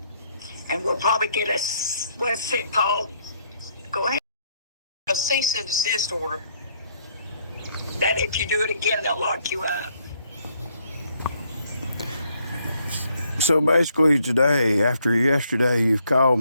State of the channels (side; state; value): both; inverted; correlation -0.70